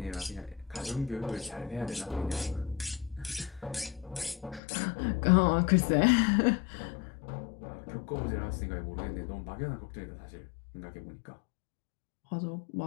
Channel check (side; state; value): right; drops out; at 4.6 s